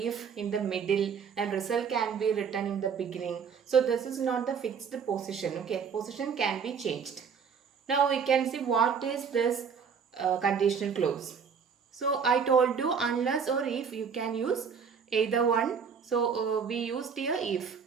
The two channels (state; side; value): quieter; left; 6.5 dB